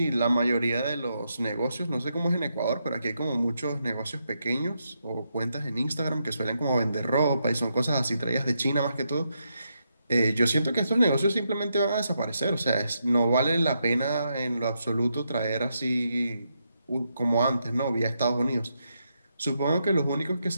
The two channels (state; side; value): inverted; both; correlation -0.82